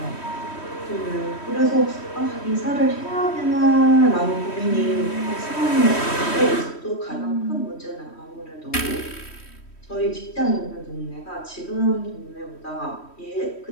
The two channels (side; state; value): right; late; 3.1 ms